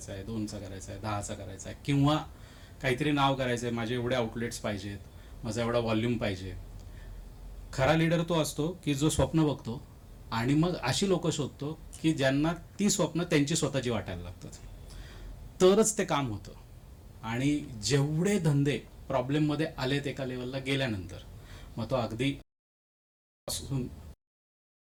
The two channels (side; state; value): both; identical; correlation 1.00